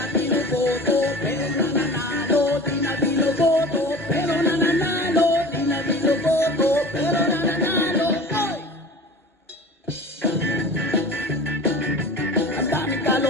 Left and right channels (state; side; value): normal; both; correlation 0.39